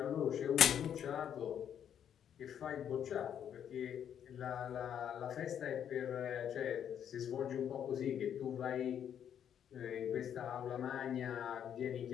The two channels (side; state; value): right; quieter; 9.1 dB